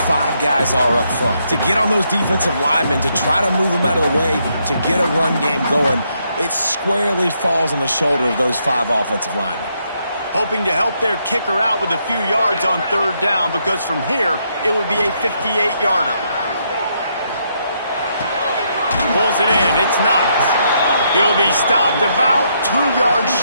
guys are up front. To get on those defensive linemen, to try to move them out of the way, to get a run game going, it squarely falls on the shoulder of those 5 offensive linemen. Hoping to help their kicker out with a few yards on third down, because from here, it would be a 58-yarder. Pulls it in. It's Knox. He'll be stopped about 2 yards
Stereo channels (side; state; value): both; inverted; correlation -0.76